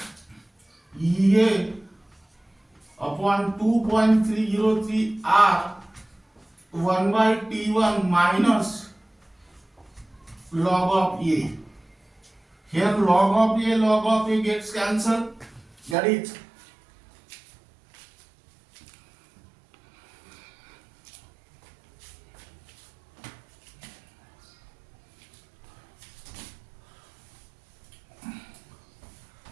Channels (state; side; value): drops out; left; at 16.0 s